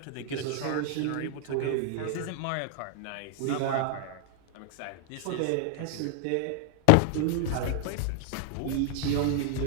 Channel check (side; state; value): both; different; correlation 0.00